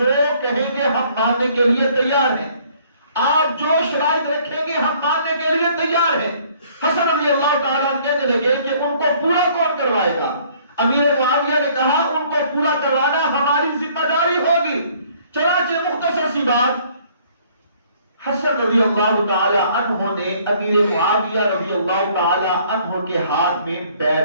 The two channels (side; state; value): both; inverted; correlation -0.60